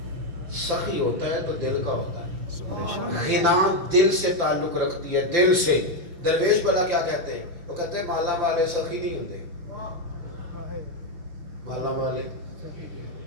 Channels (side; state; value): left; late; 5.8 ms